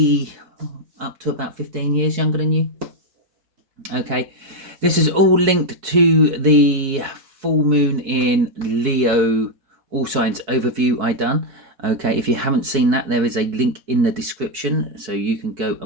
up to about 15 years younger than you. Okay, this is all linked to the full moon in Leo all signs overview I done. Okay, if you haven't seen that, there is a link in the description, so you can go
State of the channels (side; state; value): left; late; 4.6 ms